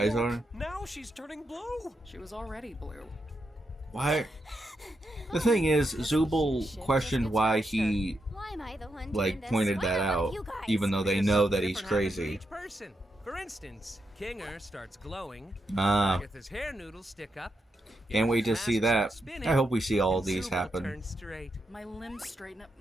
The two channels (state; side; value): normal; both; correlation 0.84